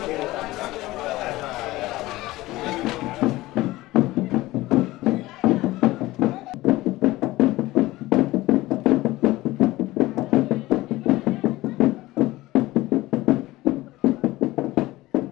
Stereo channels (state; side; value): quieter; right; 18.3 dB